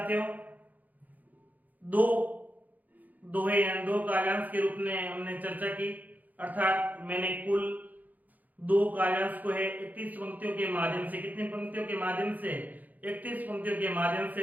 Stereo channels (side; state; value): left; late; 0.081 ms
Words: दो दोहे यानी दो काव्यांश के रूप में हमने चर्चा की, अर्थात मैंने कुल दो काव्यांश को है 31 पंक्तियों के माध्यम से, कितनी पंक्तियों के माध्यम से, 31 पंक्तियों के माध्यम से